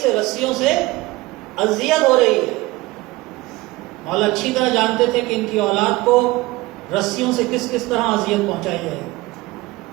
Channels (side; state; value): left; quieter; 20.2 dB